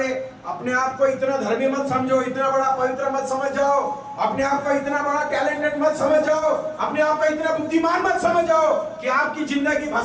अपने आप को इतना धर्मी मत समझो, इतना बड़ा पवित्र मत समझ जाओ, अपने आप को इतना बड़ा टैलेंटेड मत समझ जाओ, अपने आप को इतना बुद्धिमान मत समझ जाओ कि आपकी जिंदगी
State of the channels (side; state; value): both; identical; correlation 1.00